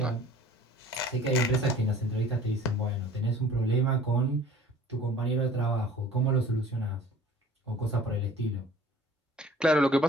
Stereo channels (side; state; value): both; normal; correlation 0.48